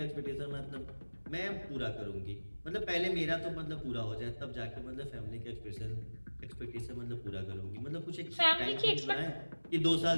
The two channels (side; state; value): both; inverted; correlation -1.00